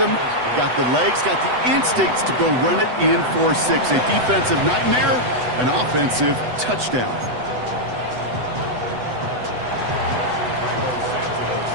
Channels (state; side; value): late; left; 8.0 ms